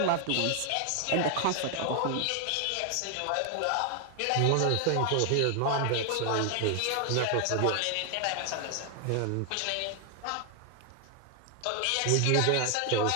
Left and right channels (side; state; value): both; different; correlation 0.00